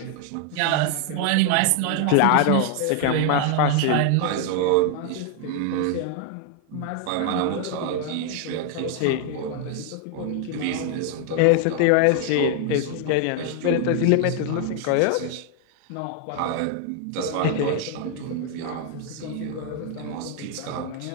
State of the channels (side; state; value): both; different; correlation 0.00